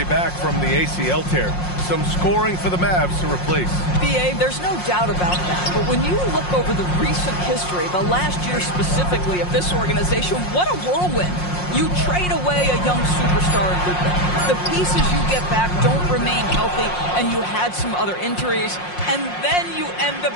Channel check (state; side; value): late; right; 5.6 ms